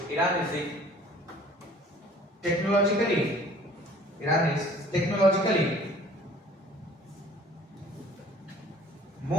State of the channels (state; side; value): normal; both; correlation 0.51